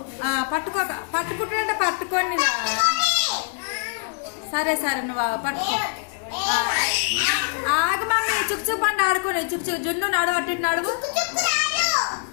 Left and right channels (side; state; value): right; silent; 56 dB below the other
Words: పట్టుకోక, పట్టుకుంటుంటే పట్టుకోండి రా. సరే సరే నువ్వు పట్టుకో. ఆగు మమ్మీ, చుక్చుక్ పండు ఆడుకోండి. చుక్చుక్ జున్ను నడువు, అట్టి నడువు.